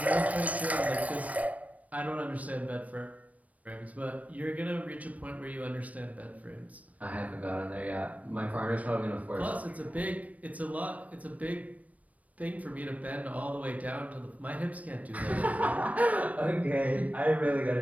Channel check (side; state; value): left; late; 0.069 ms